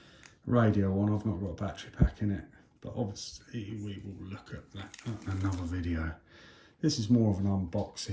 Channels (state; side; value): identical; both; correlation 1.00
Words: radio on. I've not got a battery pack in it. But obviously, we will look at that in another video. This is more of an